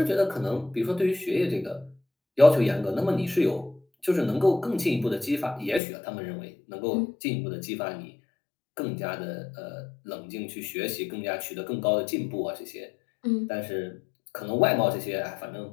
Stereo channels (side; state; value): right; drops out; at 5.8 s